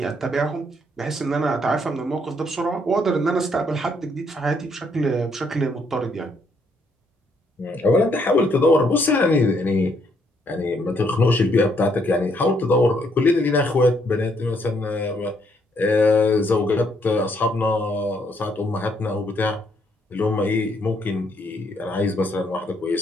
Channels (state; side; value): normal; both; correlation 0.71